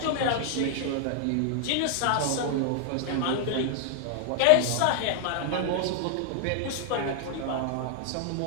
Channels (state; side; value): different; both; correlation 0.00